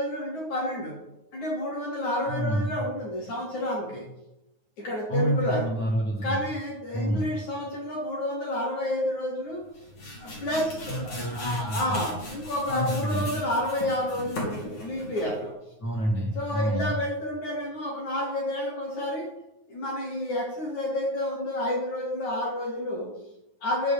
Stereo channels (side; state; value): right; late; 9.5 ms